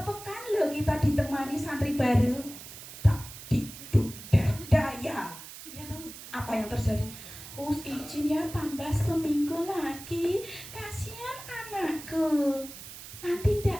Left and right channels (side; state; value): right; noise; hiss, 14 dB below the sound